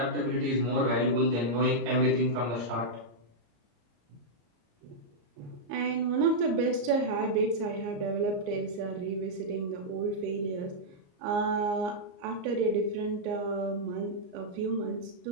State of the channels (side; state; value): left; late; 34 ms